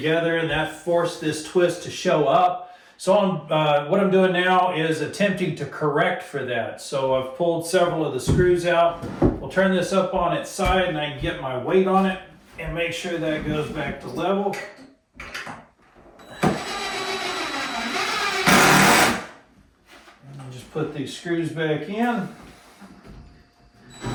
and that forced this twist to show up. So what I'm doing now is attempting to correct for that. So I've pulled several of the screws out. We'll turn this up on its side, and I can get my weight on it and make sure that goes back to level. Just put these screws back in.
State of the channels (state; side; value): identical; both; correlation 1.00